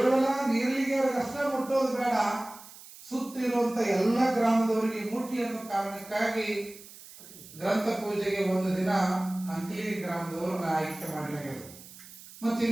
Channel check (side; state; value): right; noise; hiss, 18 dB below the sound